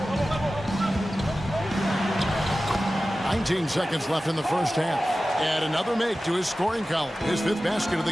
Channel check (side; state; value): both; normal; correlation 0.95